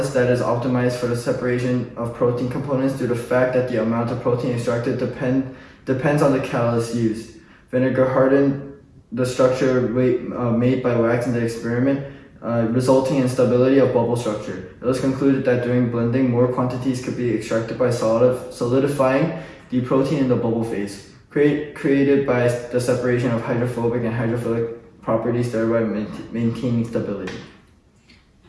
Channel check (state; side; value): identical; both; correlation 1.00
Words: that is optimized for the separation of protein components due to the fact that the amount of protein extracted depends on the catalyst used. Vinegar hardened the structure made by wax in the experiment, resulting in stability of bubble structure. It was concluded that during blending, more quantities could be extracted by solidifying the protein in the bubble phase, created by the separation of hydrophobic and hydrophilic properties, thereby maintaining stability.